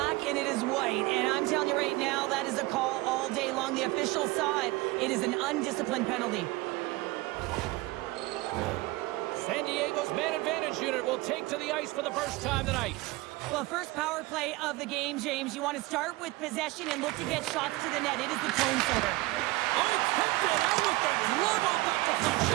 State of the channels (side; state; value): left; quieter; 20.7 dB